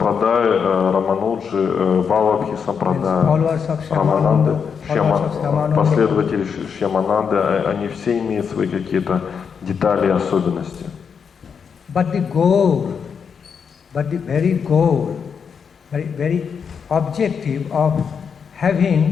Рамануджи, Валабхи сампрадая, Рамананды, последователи Шьямананды, они все имеют свои какие-то детали и особенности. But the very objective of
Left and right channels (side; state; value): right; quieter; 6.5 dB